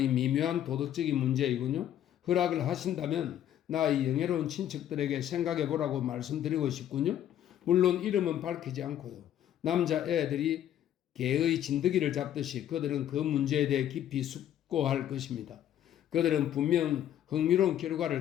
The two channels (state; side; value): quieter; right; 11.1 dB